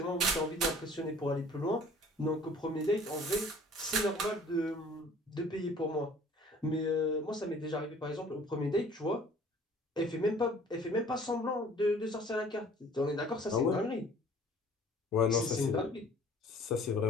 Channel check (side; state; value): both; normal; correlation 0.51